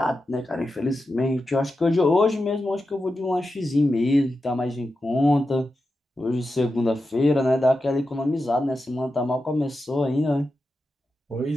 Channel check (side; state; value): both; normal; correlation 0.90